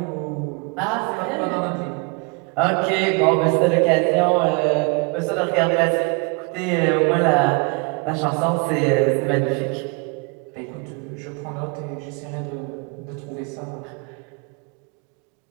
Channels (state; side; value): quieter; left; 31.9 dB